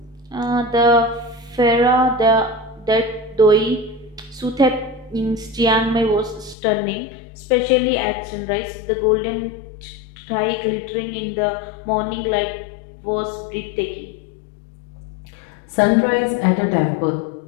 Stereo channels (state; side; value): drops out; right; at 6.6 s